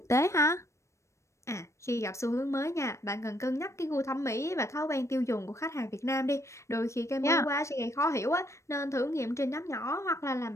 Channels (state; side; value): late; right; 0.14 ms